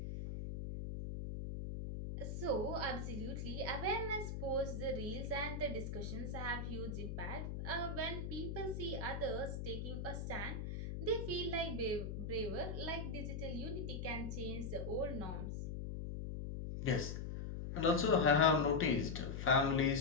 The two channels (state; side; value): noise; left; hum, 4 dB below the sound